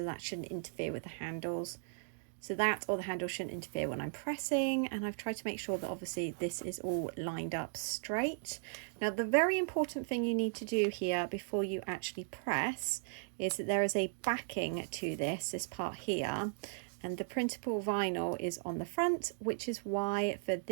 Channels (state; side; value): silent; left; digital silence